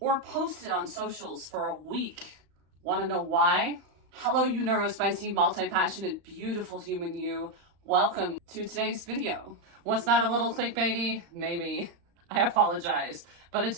or posted on socials for a week. Want to know why? Hello, you neurospicy, multi-passionate, beautiful human you. Welcome to today's video. Was that a little clickbaity? Maybe. I apologize, but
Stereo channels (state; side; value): late; left; 35 ms